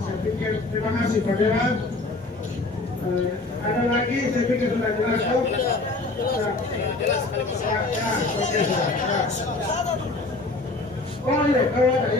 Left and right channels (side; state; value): right; quieter; 3.2 dB